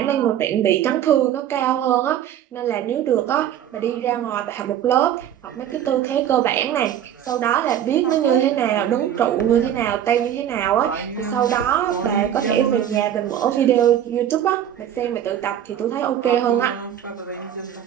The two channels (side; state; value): left; quieter; 10.4 dB